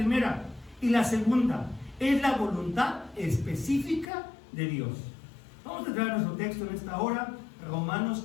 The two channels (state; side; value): drops out; right; at 4.0 s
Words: Y la segunda, ¿es la voluntad específica de Dios? Vamos a traer nuestro texto en esta hora, Romanos